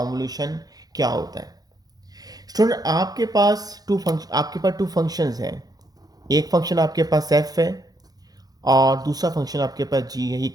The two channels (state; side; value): late; left; 0.19 ms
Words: क्या होता है। स्टूडेंट आपके पास टू फंक्शंस हैं, एक फंक्शन आपके पास f है और दूसरा फंक्शन आपके पास g है। ये